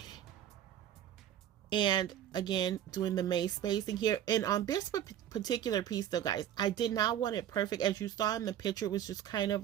And again, doing the maze spacing here. And on this particular piece though, guys, I did not want it perfect. As you saw in the picture, it was just kind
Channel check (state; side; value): quieter; left; 10.8 dB